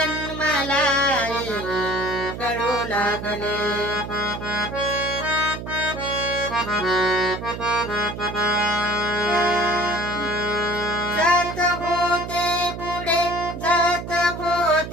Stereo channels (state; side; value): noise; right; hum, 8 dB below the sound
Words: मला कळू लागले. जात होते पुढे, जात